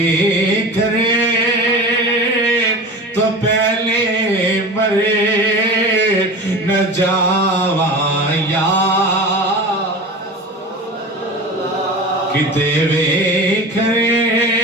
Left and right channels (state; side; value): normal; both; correlation 0.33